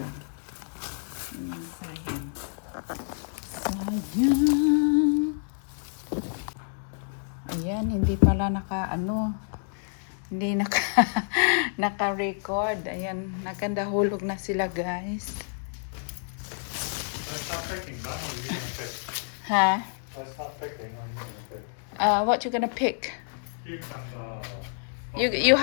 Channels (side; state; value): right; silent; digital silence